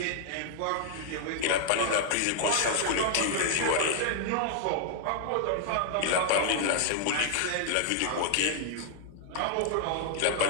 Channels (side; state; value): both; different; correlation 0.00